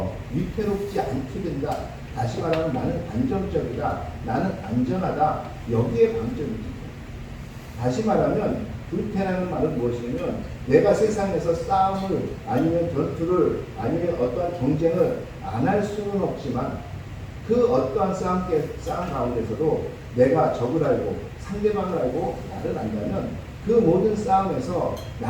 위태롭지 않게 된다. 다시 말하면 나는 안정적이다. 나는 안전하다. 여기에 방점이 찍혀요. 다시 말하면 불패라는 말은 무엇이냐면 내가 세상에서 싸움을 아니면 전투를 아니면 어떠한 경쟁을 안 할 수는 없지만 그 어떠한 싸움 가운데서도 내가 적을 알고 상대방을 알고 나를 안다면 그 모든 싸움에서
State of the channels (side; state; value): both; identical; correlation 1.00